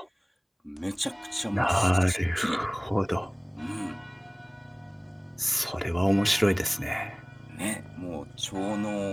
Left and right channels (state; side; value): identical; both; correlation 1.00